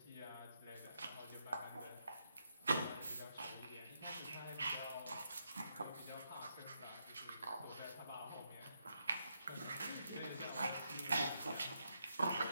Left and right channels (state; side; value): inverted; both; correlation -0.81